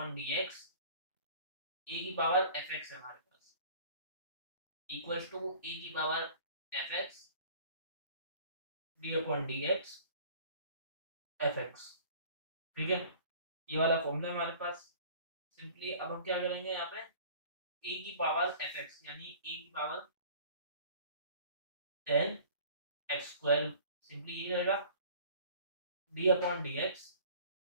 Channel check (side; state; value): both; inverted; correlation -0.47